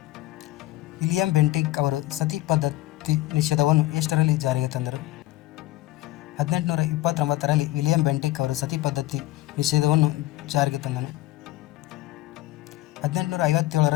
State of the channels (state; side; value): quieter; right; 17.1 dB